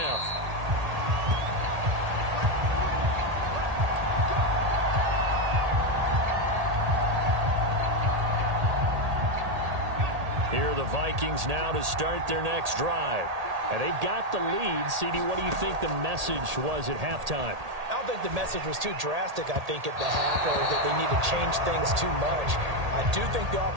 Here are the Vikings now to start their next drive. And they've got the lead. CD, what do you think the message was at halftime? I don't think the message was too drastic, I think, at the half, or that they need to change things too much. I do think the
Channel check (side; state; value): left; late; 1.8 ms